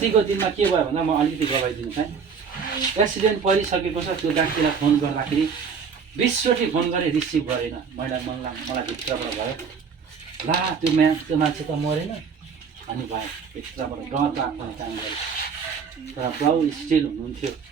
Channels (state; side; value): quieter; left; 6.2 dB